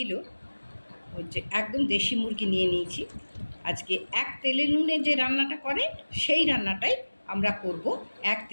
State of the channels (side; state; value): both; inverted; correlation -1.00